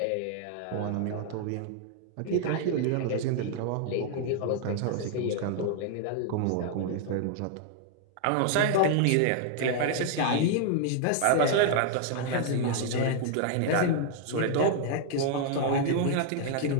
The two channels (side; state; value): both; different; correlation 0.00